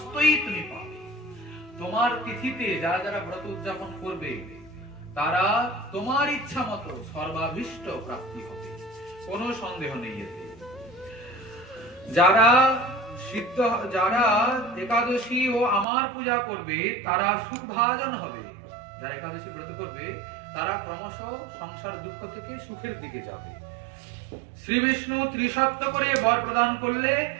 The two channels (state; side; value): drops out; left; at 15.9 s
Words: তুমি পাবে। তোমার তিথিতে যারা যারা ব্রত উদযাপন করবে তারা তোমার ইচ্ছা মতো সর্বাভীষ্ট প্রাপ্তি হবে, কোনো সন্দেহ নেই এতে। যারা যারা একাদশী ও আমার পূজা করবে তারা সুখভাজন হবে। যারা একাদশী ব্রত করবে তারা ক্রমশ সংসার দুঃখ থেকে সুখের দিকে যাবে। শ্রী বিষ্ণু ত্রিসত্য করে বর প্রদান করলে